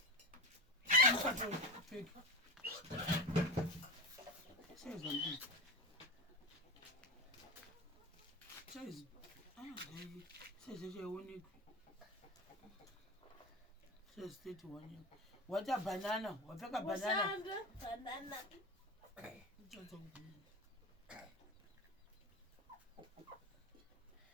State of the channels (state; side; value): normal; both; correlation 0.22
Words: Fake. Says something. Says says you only says state one. What a banana? What a banana? Banana.